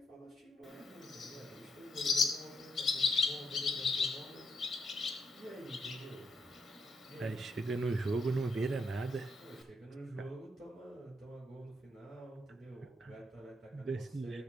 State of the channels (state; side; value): normal; both; correlation 0.78